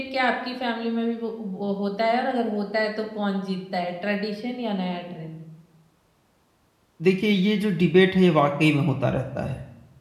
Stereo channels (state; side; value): identical; both; correlation 1.00